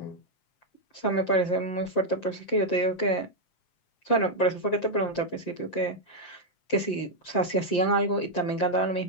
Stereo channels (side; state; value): right; late; 7.6 ms